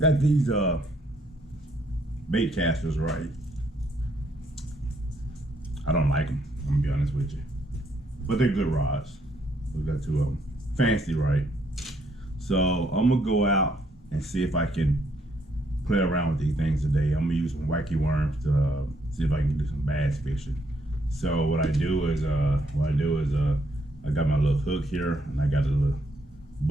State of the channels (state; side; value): normal; both; correlation 0.71